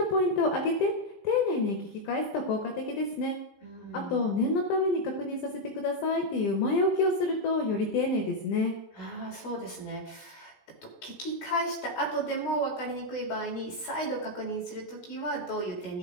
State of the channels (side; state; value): right; late; 16 ms